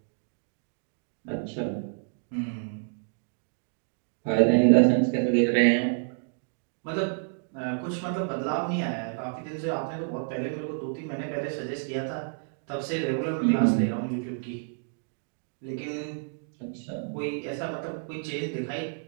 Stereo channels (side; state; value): left; silent; digital silence